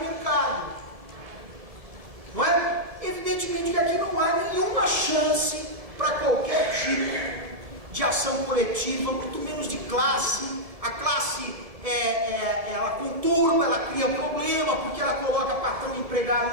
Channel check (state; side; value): late; left; 1.7 ms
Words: mercado. Não é? Evidentemente que aqui não há nenhuma chance para qualquer tipo de ação coletiva, muito menos de classe. A classe, ela conturba, ela cria problema, porque ela coloca patrão e